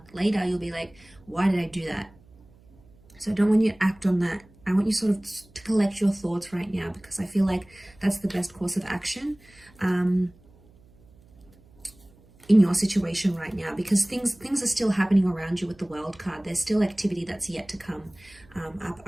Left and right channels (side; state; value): right; noise; hum, 27 dB below the sound